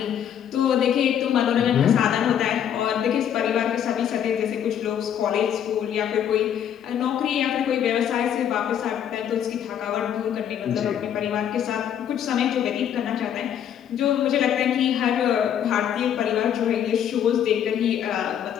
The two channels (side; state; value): right; quieter; 9.4 dB